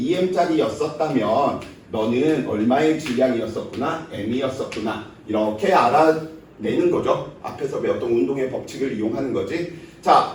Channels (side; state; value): both; identical; correlation 1.00